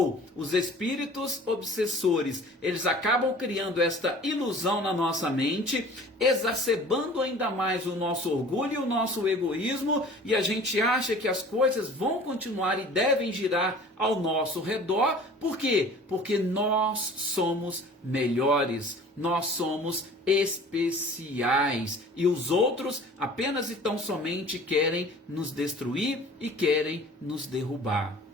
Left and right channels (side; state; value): both; normal; correlation 0.45